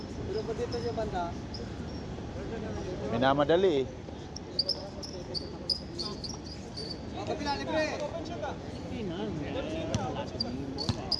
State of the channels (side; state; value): both; identical; correlation 1.00